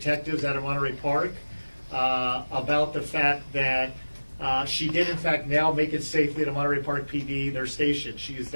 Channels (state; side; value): inverted; both; correlation -1.00